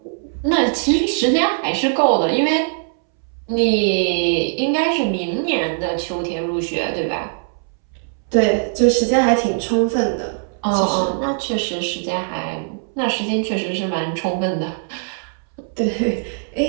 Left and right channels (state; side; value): silent; left; 65 dB below the other